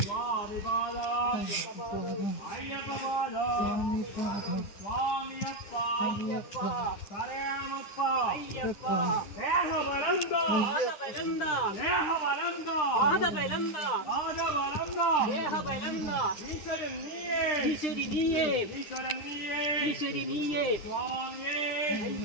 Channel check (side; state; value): right; late; 9.9 ms